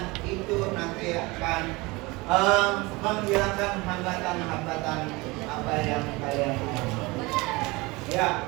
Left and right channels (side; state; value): left; quieter; 23.8 dB